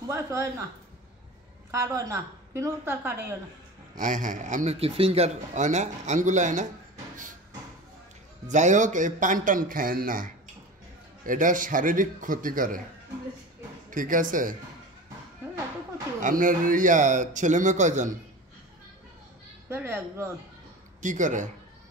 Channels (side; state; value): both; normal; correlation 0.32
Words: বয়স হয় না, কার্ড হয় না, কিন্তু তার কার্ড হয় না। হ্যাঁ হ্যাঁ, আপনার কি ফিঙ্গার হয় না, আঙ্গুল হয় না? যাই হোক, এই পান টান খায়েন না, এটা শারীরিক ক্ষতি করে, ঠিক আছে? আপনার ছেলে মেয়ে কয়জন? একজন। কি করে?